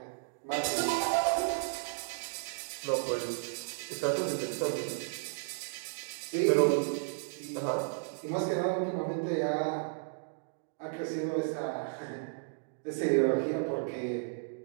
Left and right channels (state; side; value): silent; left; digital silence